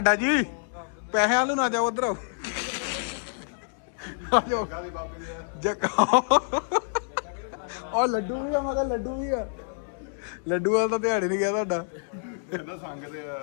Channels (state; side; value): silent; right; digital silence